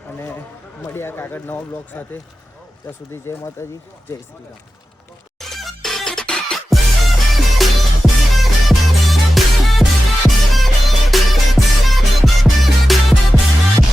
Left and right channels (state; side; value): normal; both; correlation 0.93